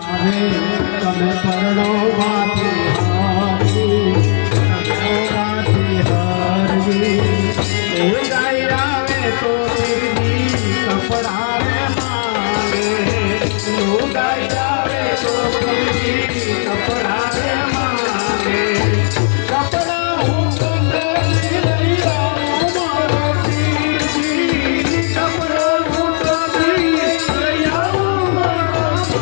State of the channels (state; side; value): silent; right; 64 dB below the other